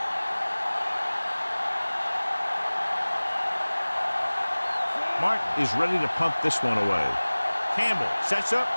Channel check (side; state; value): both; inverted; correlation -1.00